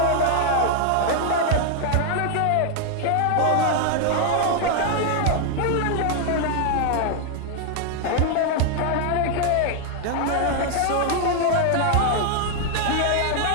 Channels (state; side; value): different; both; correlation 0.00